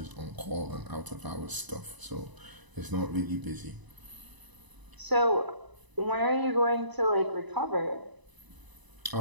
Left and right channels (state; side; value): late; left; 1.0 ms